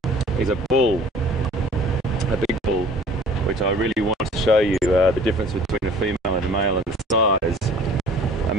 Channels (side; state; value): both; normal; correlation 0.49